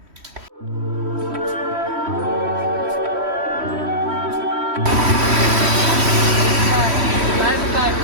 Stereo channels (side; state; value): left; late; 3.1 ms